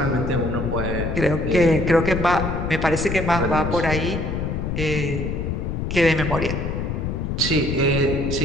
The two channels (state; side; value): noise; left; rumble, 2 dB below the sound